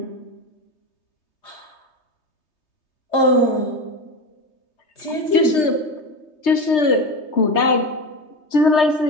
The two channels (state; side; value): late; right; 3.3 ms